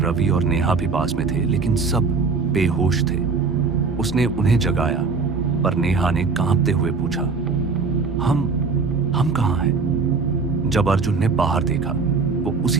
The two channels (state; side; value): quieter; left; 4.6 dB